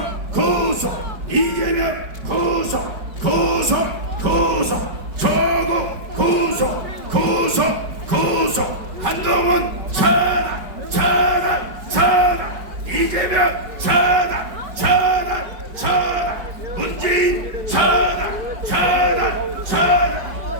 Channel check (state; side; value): late; left; 5.0 ms